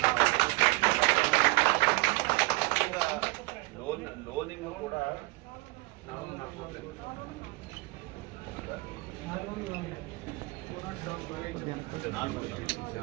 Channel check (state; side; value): quieter; left; 23.3 dB